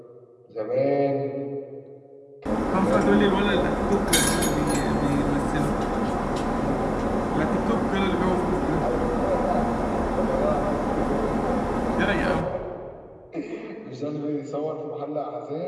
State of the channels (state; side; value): identical; both; correlation 1.00